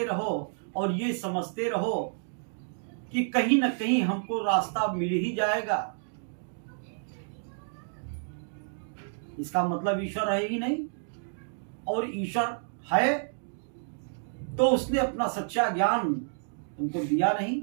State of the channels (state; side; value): silent; left; digital silence